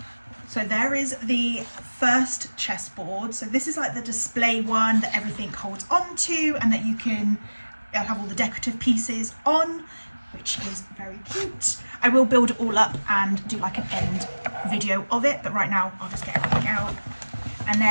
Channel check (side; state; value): both; inverted; correlation -1.00